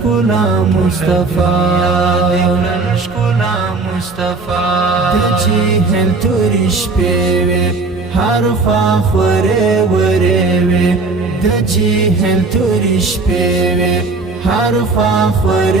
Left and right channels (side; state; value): left; quieter; 3.8 dB